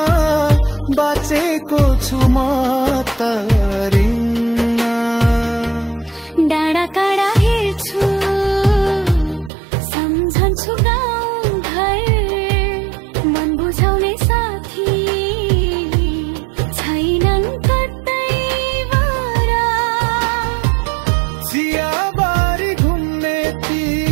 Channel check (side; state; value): left; drops out; at 9.5 s